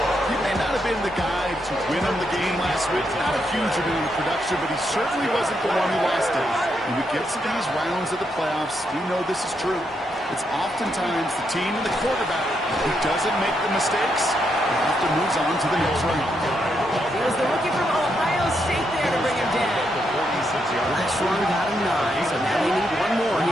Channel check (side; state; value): both; normal; correlation 0.80